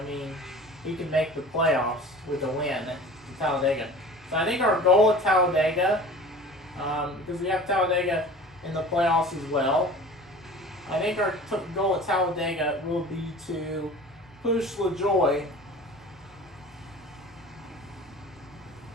mean, he can make the playoffs with a win at Talladega. So I think our goal at Talladega, because we have Talladega in the playoffs as well, I think our goal at Talladega will be to push LaJoy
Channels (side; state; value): both; normal; correlation 0.41